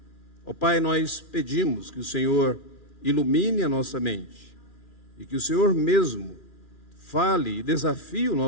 Ó Pai, nós pedimos que o Senhor ilumine a nossa mente e que o Senhor mesmo fale e desafie o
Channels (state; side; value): late; right; 2.4 ms